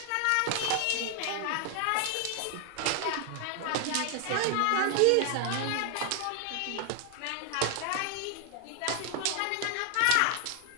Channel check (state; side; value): different; both; correlation 0.00